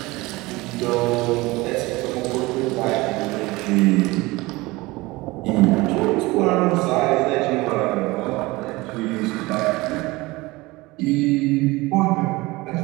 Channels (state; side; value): quieter; left; 21.6 dB